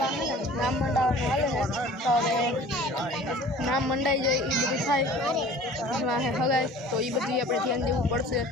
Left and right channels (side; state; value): both; normal; correlation 0.46